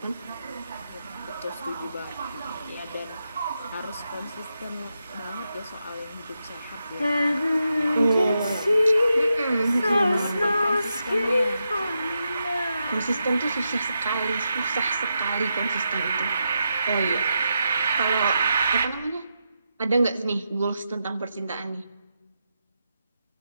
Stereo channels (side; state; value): both; inverted; correlation -0.86